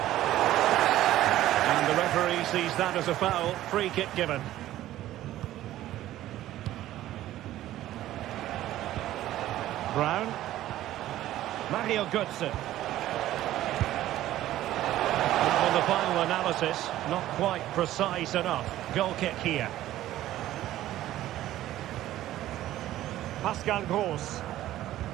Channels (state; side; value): quieter; left; 14.0 dB